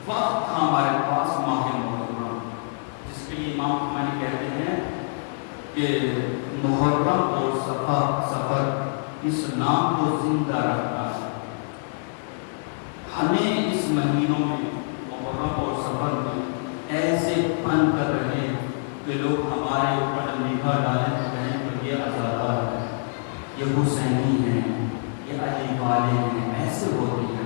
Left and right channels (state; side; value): silent; right; digital silence